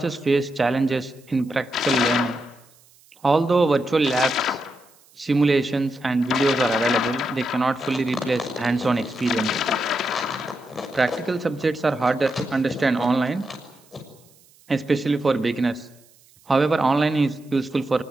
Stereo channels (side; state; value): right; noise; hiss, 29 dB below the sound